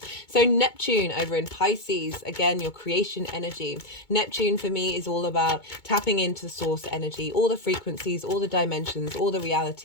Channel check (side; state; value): right; late; 2.2 ms